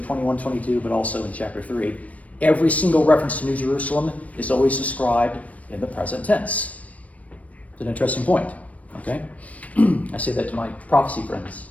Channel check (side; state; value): right; late; 0.067 ms